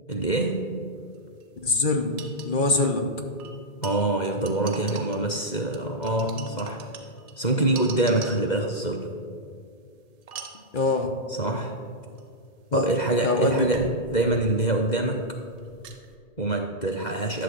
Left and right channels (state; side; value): late; right; 2.0 ms